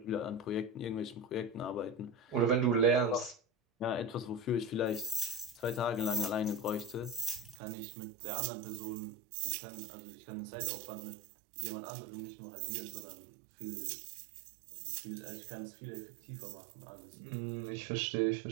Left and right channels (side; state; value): left; drops out; at 7.6 s